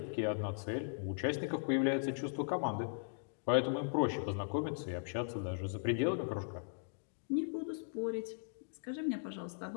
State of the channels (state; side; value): silent; right; digital silence